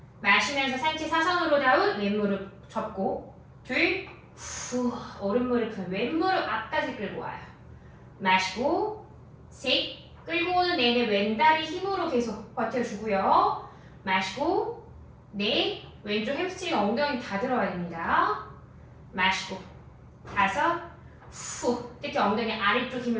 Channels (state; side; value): identical; both; correlation 1.00